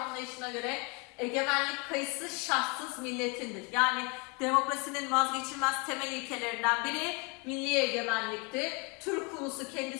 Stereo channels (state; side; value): quieter; right; 31.1 dB